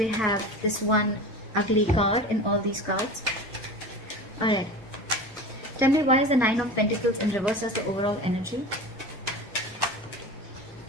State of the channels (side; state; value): both; normal; correlation 0.33